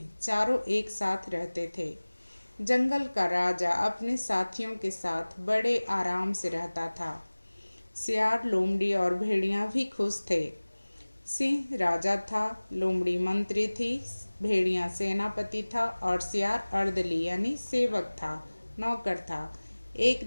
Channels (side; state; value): both; inverted; correlation -1.00